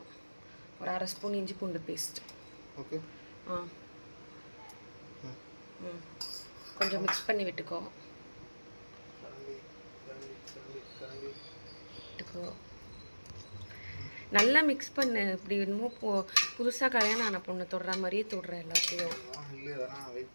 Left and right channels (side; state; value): both; inverted; correlation -1.00